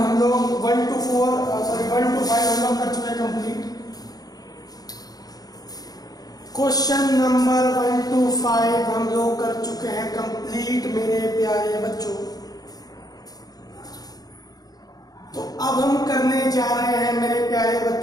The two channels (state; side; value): late; right; 0.19 ms